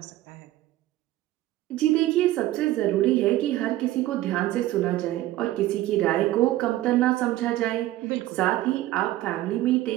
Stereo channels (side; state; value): left; quieter; 15.4 dB